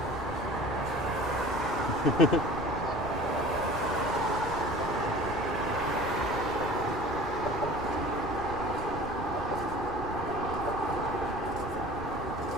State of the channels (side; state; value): right; noise; rumble, 11 dB below the sound